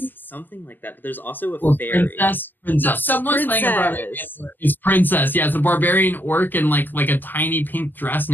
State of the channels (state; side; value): late; right; 0.088 ms